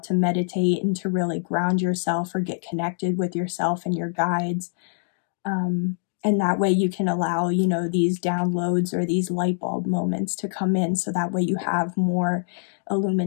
to meditate and to really ground yourself or get connected with yourself and your guides. And that way you can allow, you know, these downloads or these light bulb moments to come in, so that way you have more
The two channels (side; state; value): right; silent; 62 dB below the other